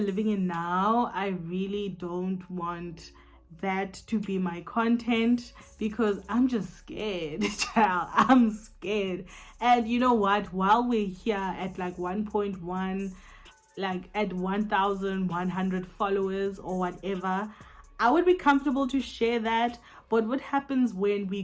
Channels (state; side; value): identical; both; correlation 1.00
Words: in now, I really don't want that to be my content, because I'm just scared, child. I'm scared. And you know what, while we're here at like 1.1, like at 1,100 followers or whatever, I would be comfortable to share that. But what happens when we